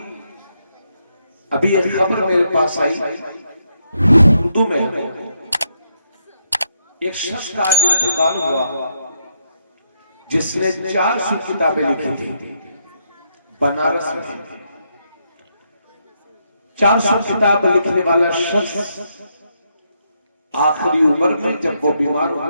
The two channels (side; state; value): both; inverted; correlation -0.78